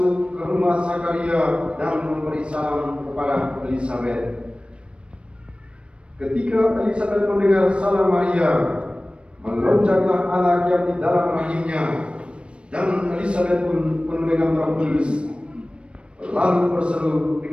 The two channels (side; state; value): left; late; 0.059 ms